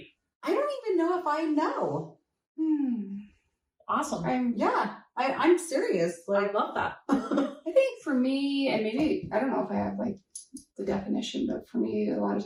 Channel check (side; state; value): both; identical; correlation 1.00